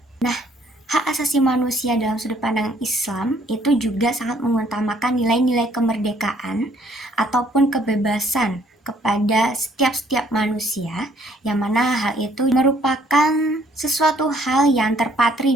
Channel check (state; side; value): normal; both; correlation 0.63